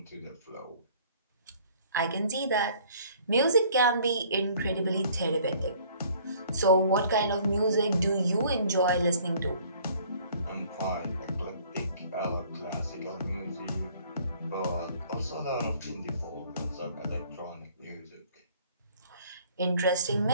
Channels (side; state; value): both; inverted; correlation -0.56